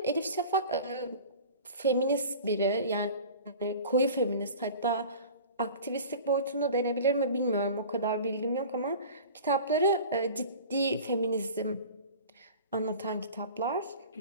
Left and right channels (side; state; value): both; inverted; correlation -0.40